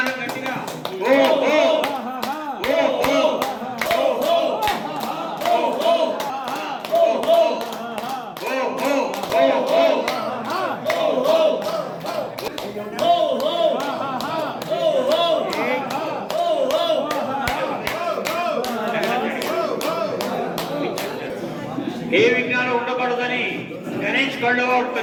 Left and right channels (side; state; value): both; identical; correlation 1.00